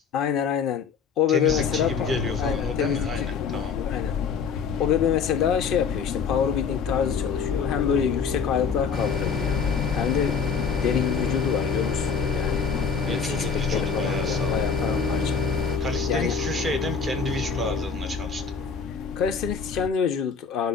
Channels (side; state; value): right; quieter; 5.9 dB